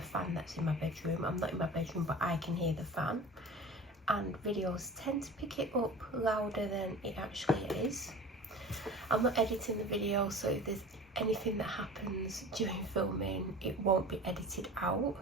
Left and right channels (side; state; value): both; normal; correlation 0.38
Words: fan that's in my bedroom. I'm not in my bedroom, but I can hear the fan. And videos tend to pick it up louder than it actually is. I'm not editing the video, so if there's anything that happens during filming, it won't be edited out.